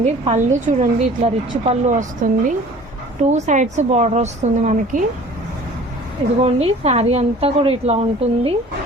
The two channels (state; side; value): normal; both; correlation 0.47